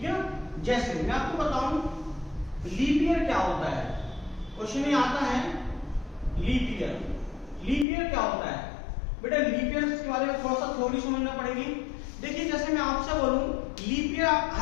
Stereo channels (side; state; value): right; drops out; at 7.9 s